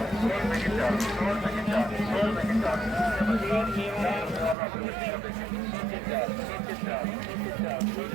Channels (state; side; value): drops out; left; at 4.5 s